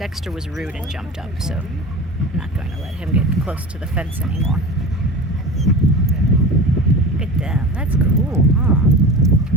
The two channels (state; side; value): normal; both; correlation 0.32